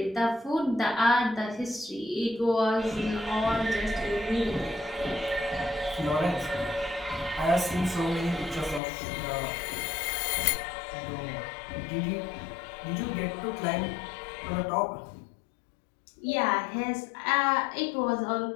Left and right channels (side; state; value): right; drops out; at 8.8 s